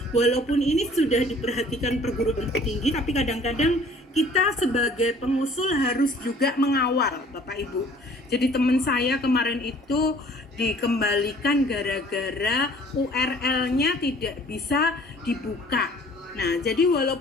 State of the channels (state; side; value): normal; both; correlation 0.53